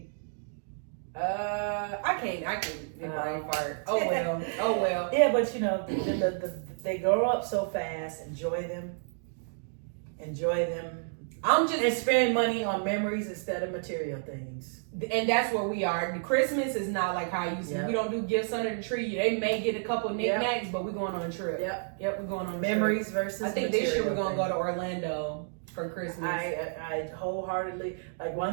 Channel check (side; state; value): left; silent; digital silence